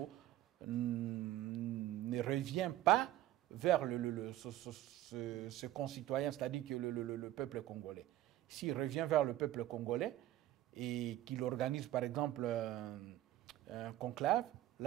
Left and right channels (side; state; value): left; quieter; 14.1 dB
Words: ne revient pas vers ce concitoyen, c'est-à-dire que le peuple congolais, s'il revient vers le peuple congolais et qu'il organise par exemple un conclave,